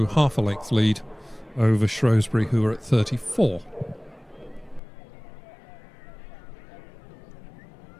half a length lead over Shrewsbury, who are at 34.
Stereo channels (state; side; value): drops out; right; at 4.8 s